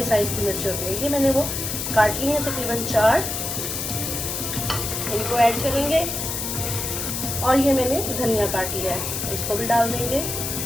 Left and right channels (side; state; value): left; noise; hiss, 3 dB below the sound